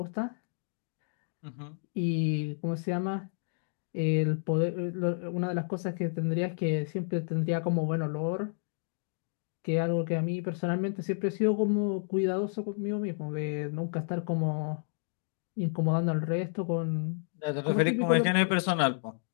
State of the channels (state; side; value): silent; right; digital silence